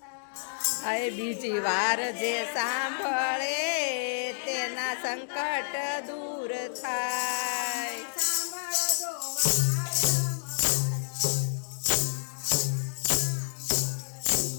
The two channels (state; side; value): silent; right; digital silence